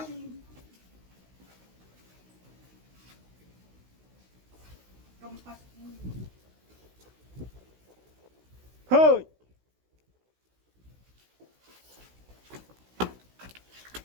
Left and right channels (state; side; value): late; left; 16 ms